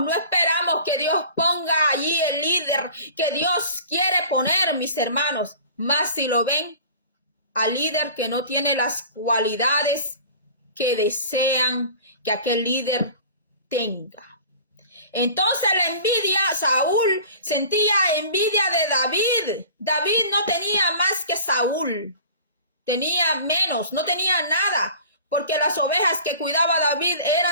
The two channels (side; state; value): both; inverted; correlation -0.42